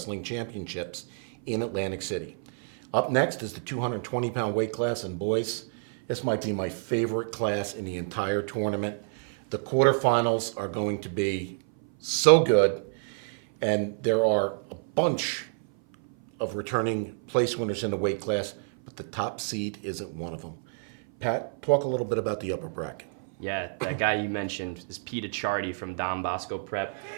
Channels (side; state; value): left; silent; 57 dB below the other